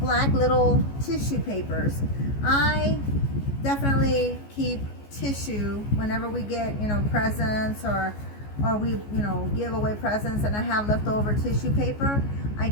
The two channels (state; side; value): late; right; 14 ms